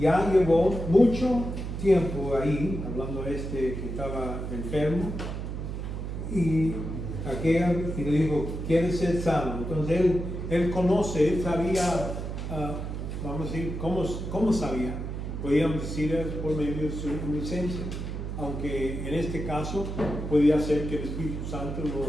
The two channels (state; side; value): noise; right; hum, 5 dB below the sound